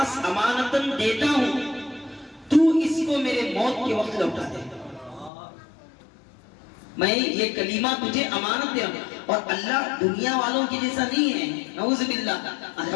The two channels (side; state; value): right; drops out; at 5.3 s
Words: امانتاً دیتا ہوں، تو اس کو میرے موت کے وقت لوٹا دے، میں یہ کلمہ تجھے امانت دے رہا ہوں۔ اور اللہ دنیا والوں کی جیسا نہیں ہے، نعوذ باللہ،